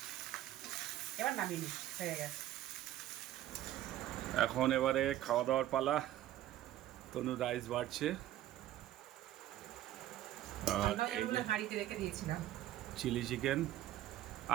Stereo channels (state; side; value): quieter; left; 13.5 dB